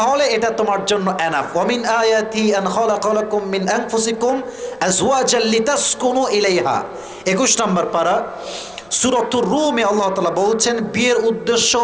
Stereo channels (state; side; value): noise; left; rumble, 29 dB below the sound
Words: এটা তোমার জন্য এনাফ। ওয়ামিন আয়াতি আন খালাকালাকুম মিন আনফুসিকুম আজওয়াজাল লিতাসকুনু ইলাইহা, 21 নম্বর পারা সূরাতুর রুমে আল্লাহ তাআলা বলছেন বিয়ের উদ্দেশ্য